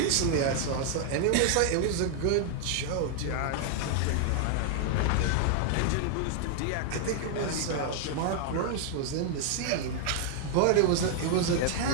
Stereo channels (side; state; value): both; different; correlation 0.00